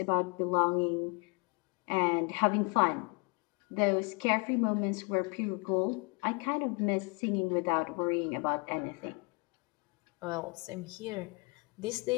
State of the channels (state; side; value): quieter; right; 31.5 dB